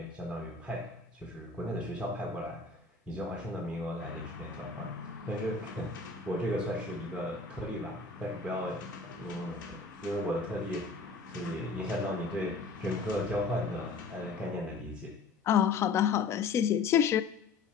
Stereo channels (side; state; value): right; quieter; 4.3 dB